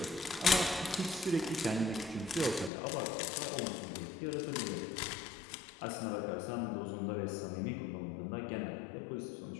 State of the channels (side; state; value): right; drops out; at 2.7 s